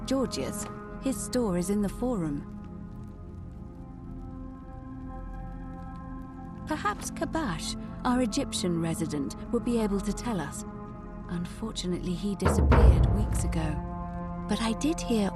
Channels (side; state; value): both; identical; correlation 1.00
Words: Georgius. His store is in the forum. Perhaps Kabash, our Egyptian resident, would be able to tell us. Unfortunately, he disappeared weeks ago. But I did hear